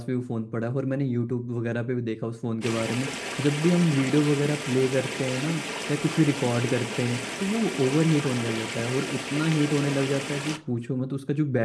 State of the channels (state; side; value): identical; both; correlation 1.00